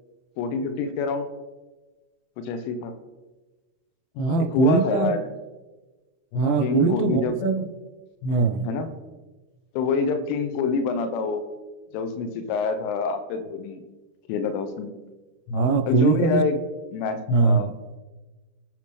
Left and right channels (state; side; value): late; right; 31 ms